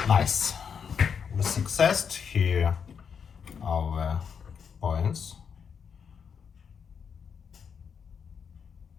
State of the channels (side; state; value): right; quieter; 6.8 dB